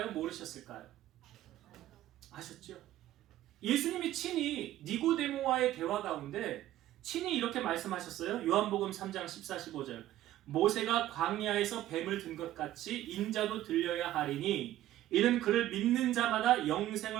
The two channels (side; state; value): left; quieter; 13.9 dB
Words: 모르셨을까요? 아셨죠? 예수님이 친히 니고데모와의 대화 가운데 친히 이렇게 말씀하셨어요. 요한복음 3장 14, 15절 모세가 광야에서 뱀을 든 것 같이 인자도 들려야 하리니 이는 그를 믿는 자마다